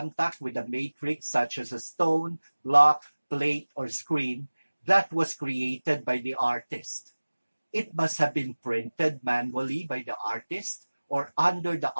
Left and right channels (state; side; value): inverted; both; correlation -1.00